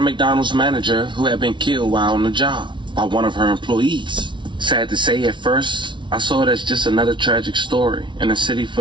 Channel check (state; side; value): late; left; 0.24 ms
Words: manager who had been killed while on the job by one of her employees. Sad to say, at first, I saw it as just another tragic story in a city